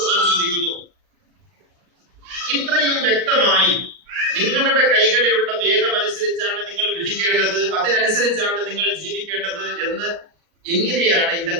ചോദിക്കുന്നു. ഇത്രയും വ്യക്തമായി നിങ്ങളുടെ കൈകളിലുള്ള വേദം അനുസരിച്ചാണ് നിങ്ങൾ വിധിക്കേണ്ടത്, അതിനനുസരിച്ചാണ് നിങ്ങൾ ജീവിക്കേണ്ടത് എന്ന് എങ്ങനെയാണ്?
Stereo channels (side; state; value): left; late; 39 ms